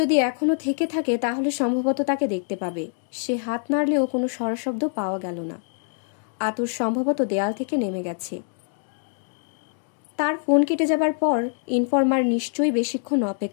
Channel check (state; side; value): silent; right; digital silence